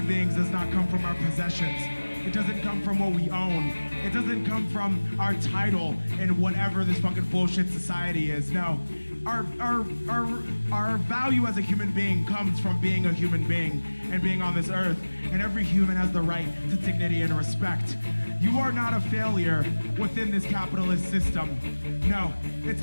beings does not come from our possessions. It doesn't come from what we own. It doesn't come from our title in whatever this fucking bullshit society is. No, our value as a human being comes from being a human being and being on this earth. And every human has the right to dignity and respect. You are not a failure within this capitalist system. No, it's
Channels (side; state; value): both; inverted; correlation -1.00